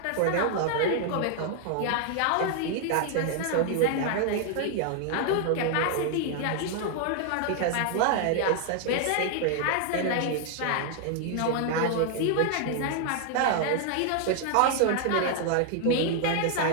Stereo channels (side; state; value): both; different; correlation 0.00